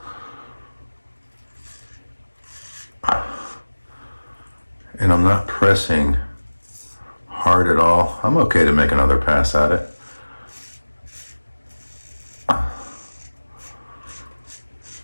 And I'm not pressing hard at all. I'm okay to make another pass at it.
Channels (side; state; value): both; inverted; correlation -1.00